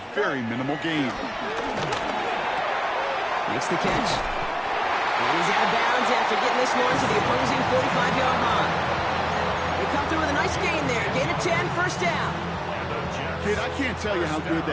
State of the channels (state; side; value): identical; both; correlation 1.00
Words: very minimal gain. Makes the catch. And he's out of bounds after getting this one to the opposing 45-yard line. They come through with a nice gain there. Gain of 10, first down. Kid, I can't tell you how good